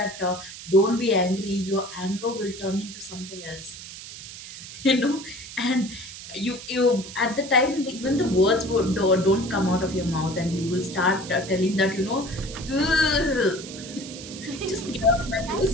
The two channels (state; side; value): noise; right; hiss, 13 dB below the sound